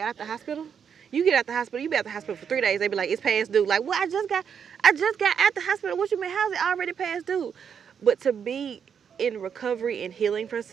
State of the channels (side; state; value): left; quieter; 7.4 dB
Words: out the hospital. You get out the hospital, you be out the hospital for 3 days. They be like, it's past due. Like, well, I just got out the hospital. What you mean? How's it already past due? But to be in recovery and healing from